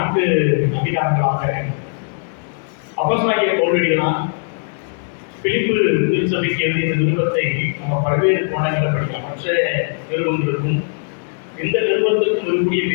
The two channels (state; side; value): silent; right; digital silence